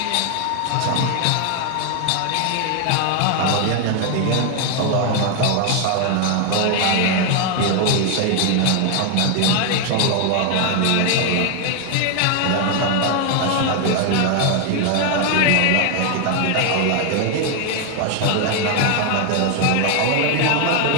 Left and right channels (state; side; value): different; both; correlation 0.01